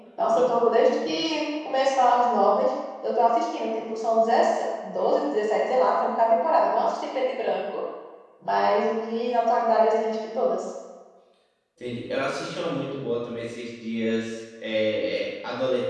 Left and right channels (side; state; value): both; identical; correlation 1.00